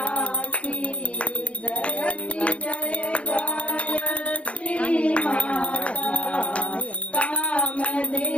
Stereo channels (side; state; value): right; late; 0.063 ms